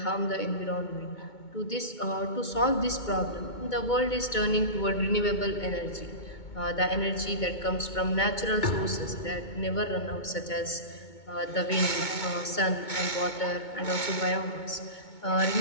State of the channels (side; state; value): right; late; 2.2 ms